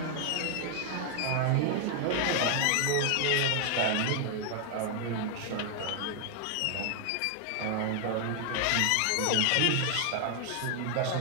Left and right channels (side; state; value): both; different; correlation 0.00